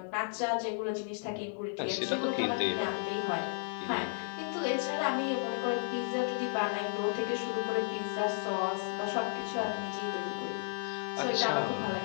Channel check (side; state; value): right; silent; 55 dB below the other